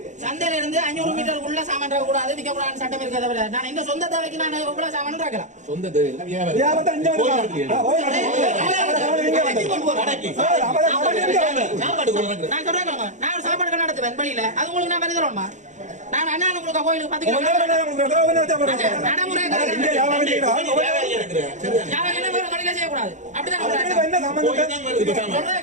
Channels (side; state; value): left; late; 0.35 ms